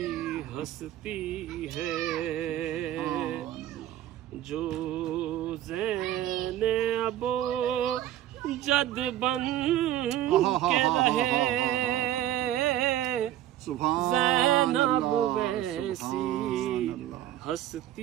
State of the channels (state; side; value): quieter; left; 12.6 dB